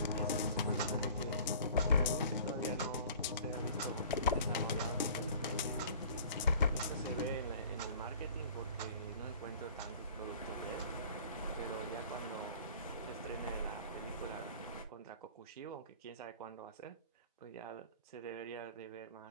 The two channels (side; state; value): both; inverted; correlation -0.47